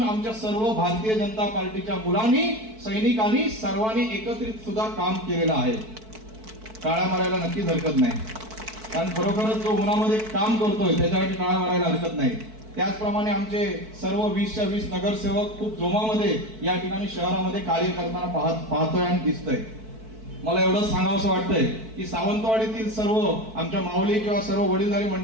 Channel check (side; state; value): left; late; 4.6 ms